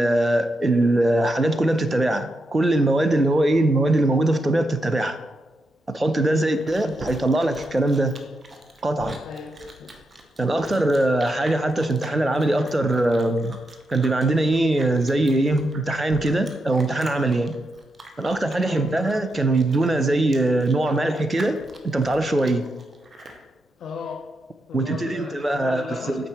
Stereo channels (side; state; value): both; normal; correlation 0.84